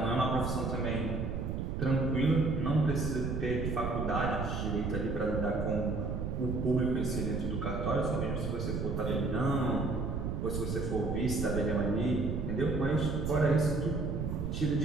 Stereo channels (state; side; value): noise; right; rumble, 2 dB below the sound